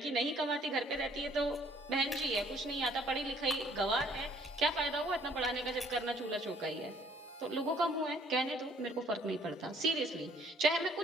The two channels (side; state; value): both; normal; correlation 0.60